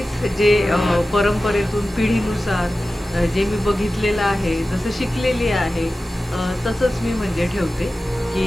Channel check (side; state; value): both; normal; correlation 0.95